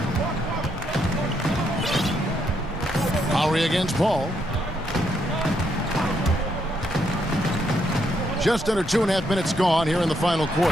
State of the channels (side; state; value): both; normal; correlation 0.76